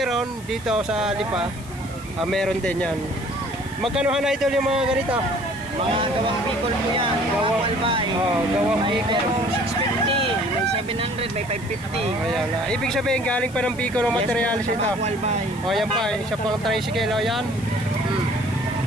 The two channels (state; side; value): noise; left; hiss, 20 dB below the sound